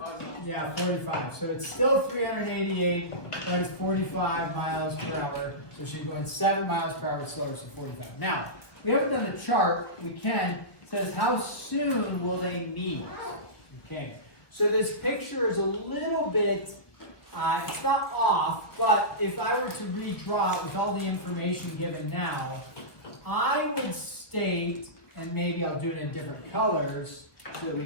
Yeah, 45. So it's still 388. That is 45 miles per hour. So she's going 7 miles per hour slower, so 45. Now, we haven't done a chart. We can. It says, how soon will they meet? Okay. So this picture is a little bit, it's not off, but if I were to redraw it with all the information given now, I would state, and maybe I'll do it in different colors so that we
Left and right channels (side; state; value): right; late; 1.4 ms